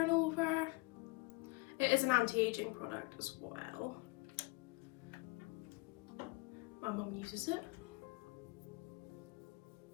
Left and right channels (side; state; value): right; quieter; 25.2 dB